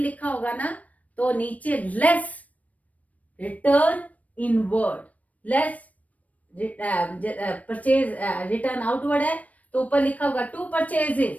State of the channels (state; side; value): late; right; 0.070 ms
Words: होगा ना तो नीचे less return inward, less purchase return outward है तो ऊपर लिखा होगा to